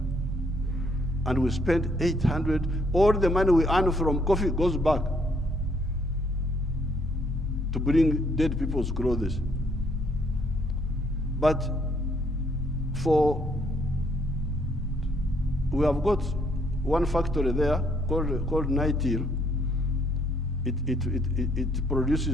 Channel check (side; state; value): both; normal; correlation 0.69